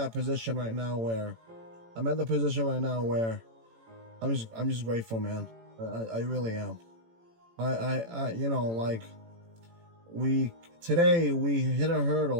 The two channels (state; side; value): late; left; 18 ms